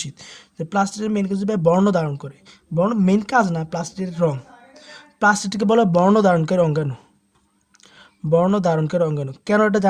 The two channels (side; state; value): both; identical; correlation 1.00